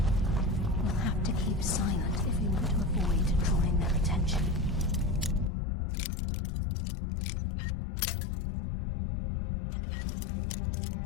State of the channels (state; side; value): drops out; right; at 5.5 s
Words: We'll have to keep silent if we want to avoid drawing their attention.